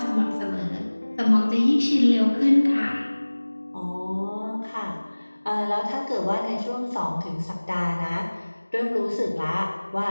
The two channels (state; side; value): inverted; both; correlation -1.00